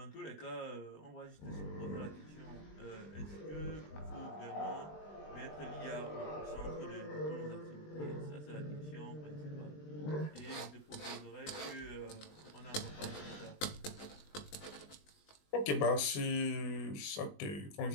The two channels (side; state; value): right; late; 20 ms